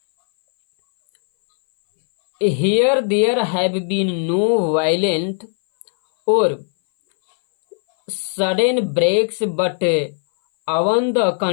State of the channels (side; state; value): right; silent; 60 dB below the other